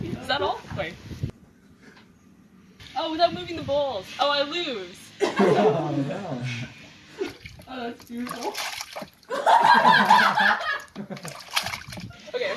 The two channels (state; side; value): identical; both; correlation 1.00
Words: Is that all? Wait. Oh, without moving the balls. Oh, I lose. Oh, no. Oh, that's beautiful. Okay,